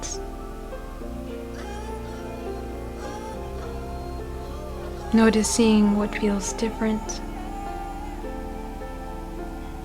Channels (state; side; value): identical; both; correlation 1.00